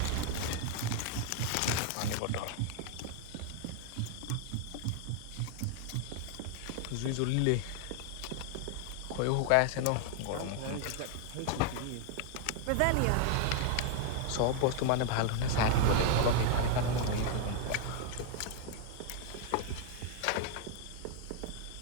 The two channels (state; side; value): different; both; correlation 0.00